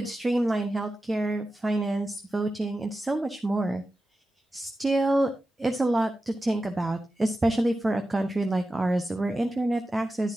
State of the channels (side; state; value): both; normal; correlation 0.92